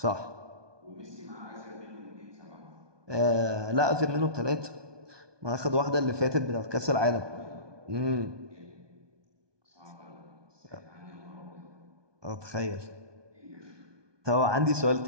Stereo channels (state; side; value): late; left; 1.2 ms